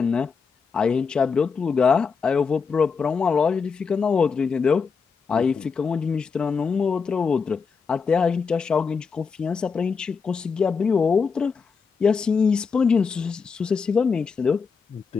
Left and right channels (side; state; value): right; quieter; 5.5 dB